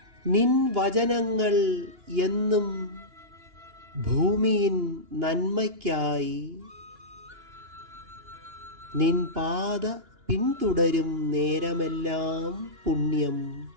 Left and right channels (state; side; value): late; left; 2.9 ms